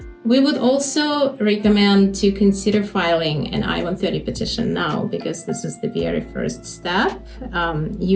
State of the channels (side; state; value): both; identical; correlation 1.00